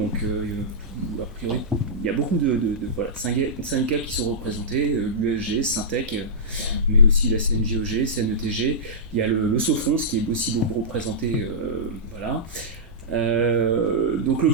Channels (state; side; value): normal; both; correlation -0.14